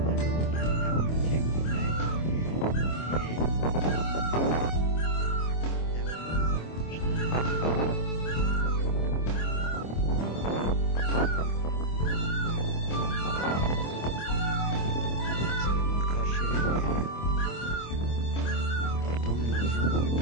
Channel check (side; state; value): right; late; 25 ms